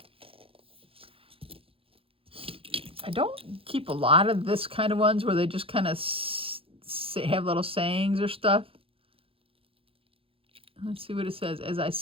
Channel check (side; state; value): left; late; 0.27 ms